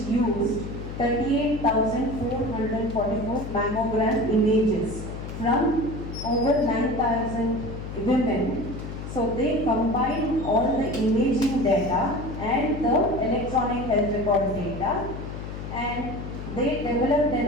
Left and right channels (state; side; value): noise; left; hum, 8 dB below the sound